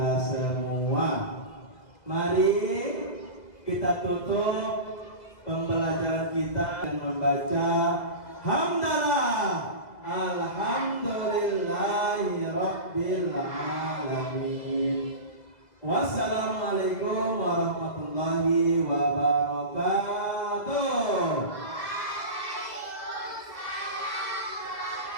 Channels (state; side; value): late; right; 2.0 ms